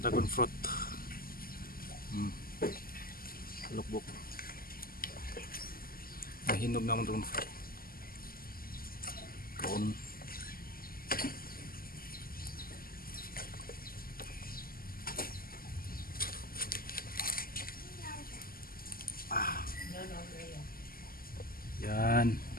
Dragon fruit. Lukbok. Mahinog naman dragon fruit. Kaon. Yan.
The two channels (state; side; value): late; right; 0.42 ms